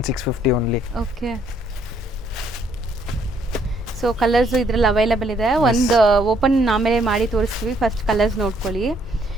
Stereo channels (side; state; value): both; normal; correlation 0.68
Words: only. Okay. So colours ಇದ್ರಲ್ಲಿ ಅವೈಲೇಬಲ್ ಇದೆ. ಒಂದು ಓಪನ್ ಆಮೇಲೆ ಮಾಡಿ ತೋರಿಸ್ತೀವಿ. ಫಸ್ಟ್ ಕಲರ್ಸ್ ನೋಡ್ಕೊಳ್ಳಿ.